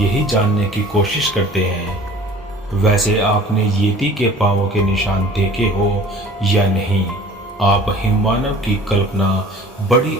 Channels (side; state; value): both; normal; correlation 0.47